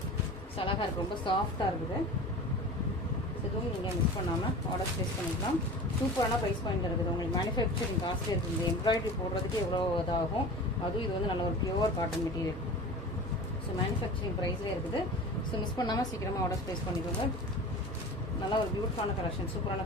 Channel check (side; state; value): both; normal; correlation 0.36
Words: ஸோ அழகாக இருக்குது, ரொம்ப சாஃப்டாக இருக்குது. இதுவும் நீங்கள் மிஸ் பண்ணாமல் ஆர்டர் ப்ளேஸ் பண்ணிக்கலாம். சூப்பரான ப்ரைஸ் பாயிண்ட் இருக்குது. உங்களுக்கு மேனுஃபேக்சரிங் காஸ்ட்லி இருக்குது. இந்த எம்ப்ராய்டரி போடுறதுக்கு எவ்வளோ இதாகும். அதுவும் இது வந்து நல்ல ஒரு pure cotton material. So manufacturing ப்ரைஸ்லேயே இருக்குது. ஸோ மிஸ் பண்ணாமல் சீக்கிரமாக ஆர்டர் ப்ளேஸ் பண்ணிக்கோங்க. நல்லா ஒரு பியூட்டிஃபுல்லான கலெக்ஷன், சூப்பரான